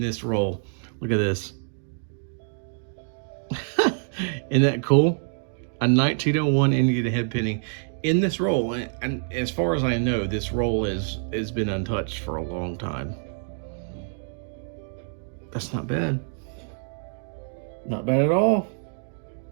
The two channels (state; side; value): silent; left; digital silence